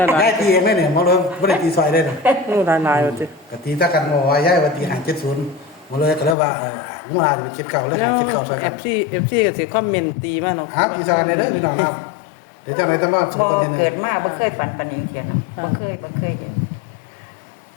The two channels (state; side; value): drops out; right; at 6.4 s